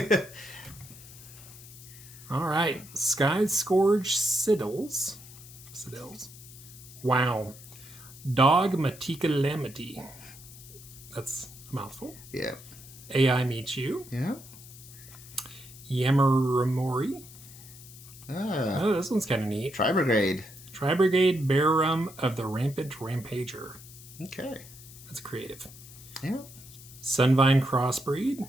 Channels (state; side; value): noise; left; hiss, 18 dB below the sound